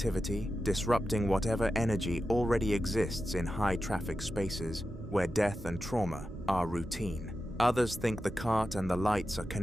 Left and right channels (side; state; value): right; noise; hum, 16 dB below the sound